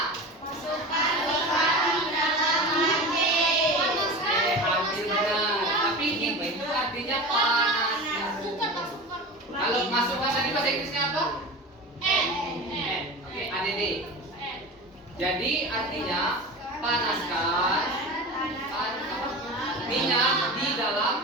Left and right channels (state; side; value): normal; both; correlation 0.30